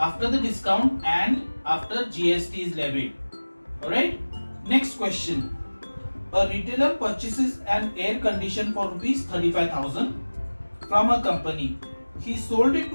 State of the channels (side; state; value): both; inverted; correlation -1.00